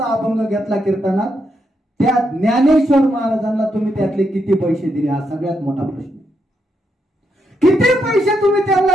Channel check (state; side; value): normal; both; correlation 0.81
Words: अभंग घेतला कीर्तनात, त्या ज्ञानेश्वर महाराजांना तुम्ही त्यातले किती पैसे दिले हा सगळ्यात मोठा प्रश्न. किती पैसे तुम्ही